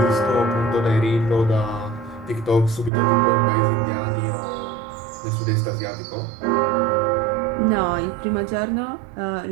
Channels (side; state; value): left; drops out; at 2.9 s